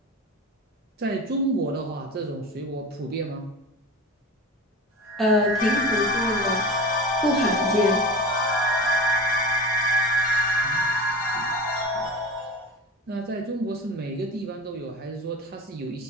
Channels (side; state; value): both; normal; correlation 0.31